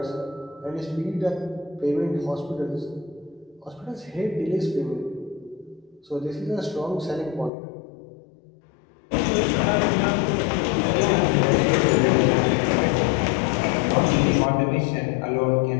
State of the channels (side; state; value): right; drops out; at 7.5 s